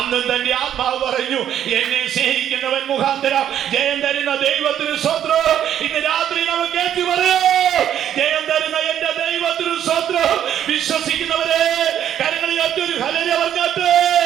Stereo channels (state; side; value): quieter; left; 10.3 dB